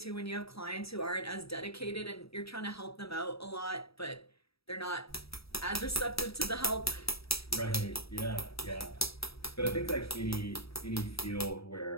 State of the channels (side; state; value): right; late; 0.77 ms